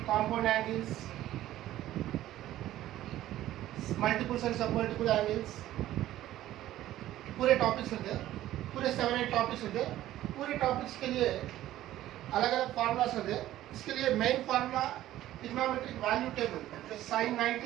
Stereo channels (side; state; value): left; quieter; 14.0 dB